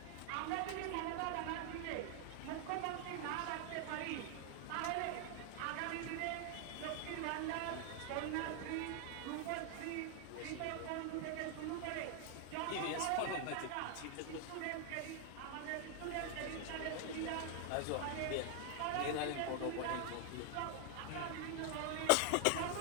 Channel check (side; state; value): both; different; correlation 0.00